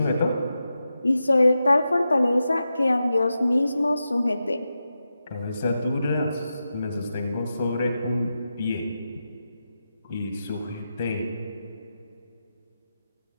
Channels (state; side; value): inverted; both; correlation -0.89